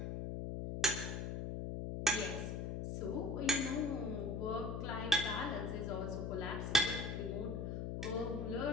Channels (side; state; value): left; noise; hum, 3 dB below the sound